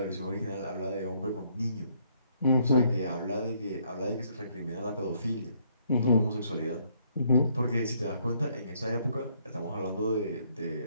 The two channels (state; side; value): inverted; both; correlation -0.69